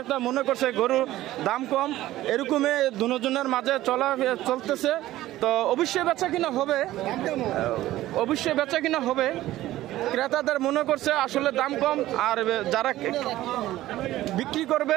মনে করছে গরুর দাম কম। এরকমই দুজনের মাঝে চলতেছে। তো অবশ্যই বেচা কিনা হবে। ক্রেতাদের মনে করছে আসলে দাম কম, আর যারা বিক্রি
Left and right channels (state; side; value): quieter; left; 15.3 dB